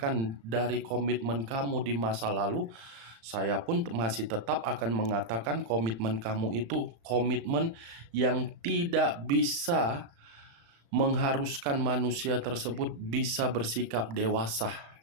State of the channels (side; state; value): left; late; 35 ms